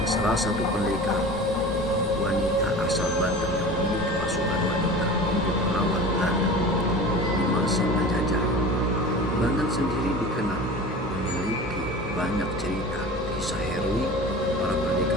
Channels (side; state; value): both; normal; correlation 0.36